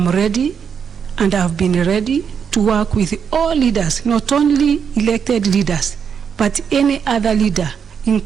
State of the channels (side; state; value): left; quieter; 7.0 dB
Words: ready, and I've been ready to work with all leaders, not only elected leaders, but any other leader,